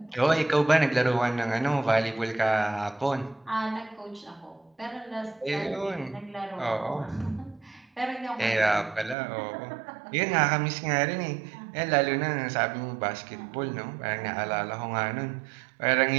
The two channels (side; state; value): left; drops out; at 9.2 s